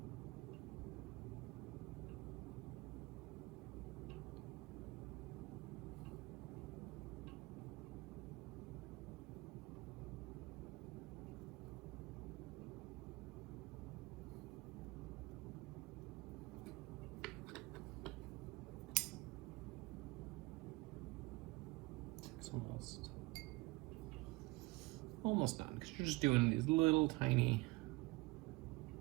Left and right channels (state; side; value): quieter; left; 23.0 dB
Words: It's almost done, because you're just doing these little tiny